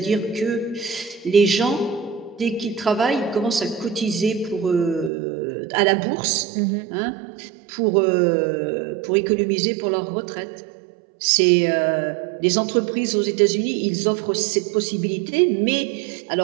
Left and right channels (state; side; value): drops out; left; at 5.1 s